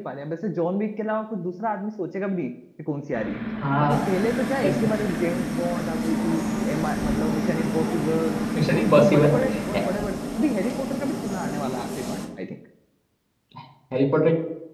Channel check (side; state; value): both; identical; correlation 1.00